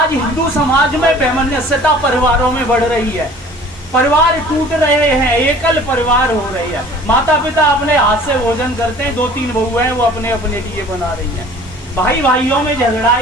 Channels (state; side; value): normal; both; correlation 0.48